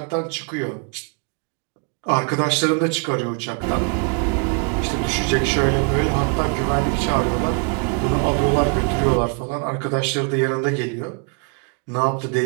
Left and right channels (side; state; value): left; quieter; 36.5 dB